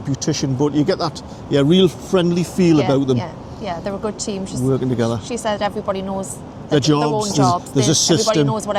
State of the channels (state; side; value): identical; both; correlation 1.00